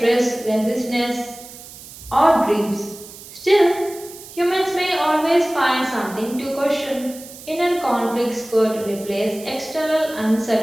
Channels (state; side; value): noise; right; hiss, 16 dB below the sound